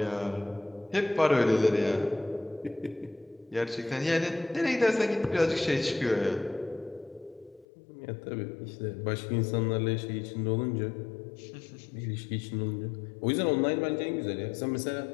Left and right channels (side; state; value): right; drops out; at 7.7 s